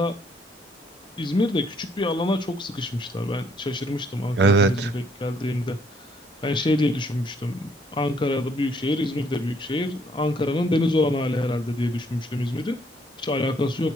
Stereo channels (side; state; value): both; normal; correlation 0.67